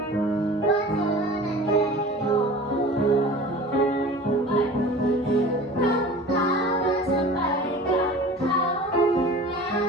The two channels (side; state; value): both; normal; correlation 0.40